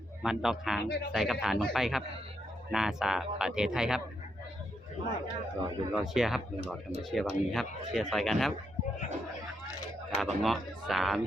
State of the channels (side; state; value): both; normal; correlation 0.80